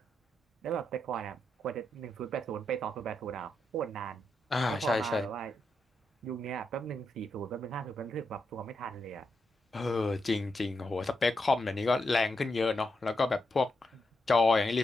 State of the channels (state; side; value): normal; both; correlation 0.84